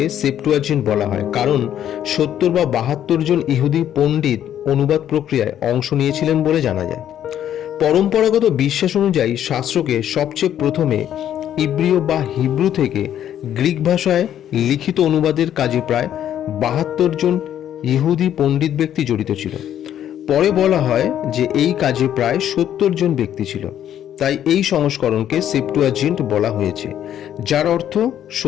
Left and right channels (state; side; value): quieter; right; 10.6 dB